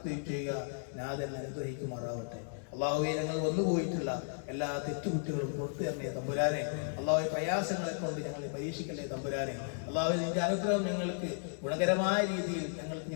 ചെയ്യുക. നാഥൻ അനുഗ്രഹിക്കുമാറാവട്ടെ. അള്ളാഹുവെ, ഞങ്ങൾ വന്നുപോയിട്ടുള്ള എല്ലാ തെറ്റുകുറ്റങ്ങളും പുറത്തു തരണേ തമ്പുരാനെ. അള്ളാഹുവെ, പ്രയാസങ്ങളെ കൊണ്ട് ഞങ്ങളെ പരീക്ഷിക്കല്ലേ തമ്പുരാനെ. അള്ളാഹുവെ, നിന്റെ അനുഗ്രഹം ഞങ്ങൾക്ക് ഗുണകരമായ രീതിയിൽ ഞങ്ങൾക്ക്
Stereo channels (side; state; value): right; silent; 55 dB below the other